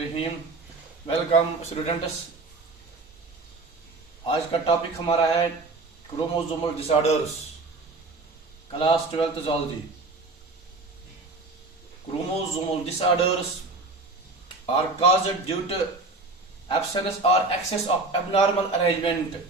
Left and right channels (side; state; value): left; quieter; 3.4 dB